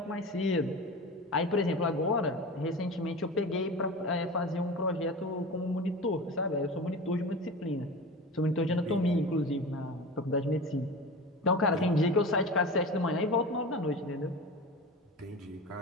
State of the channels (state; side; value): normal; both; correlation 0.31